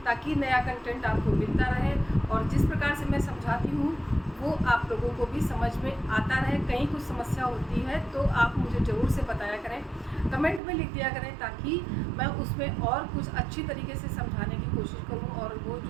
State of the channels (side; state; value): left; drops out; at 10.6 s